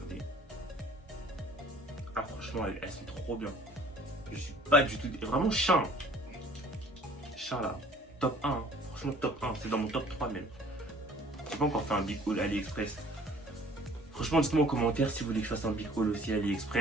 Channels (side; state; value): both; normal; correlation 0.53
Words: Ah, franchement, elles sont trop bien. Je suis pas du tout... Vraiment, Shein. Shein, là. Top 1. Hein. Franchement, top 1. C'est dans mon top 3, même. J'ai pas encore fait un big haul AliExpress. Franchement, dites-moi en commentaire si vous voulez que je fasse un big haul aussi